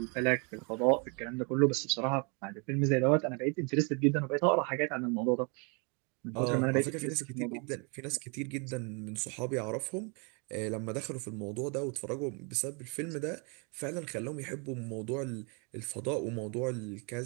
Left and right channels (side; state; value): left; quieter; 34.4 dB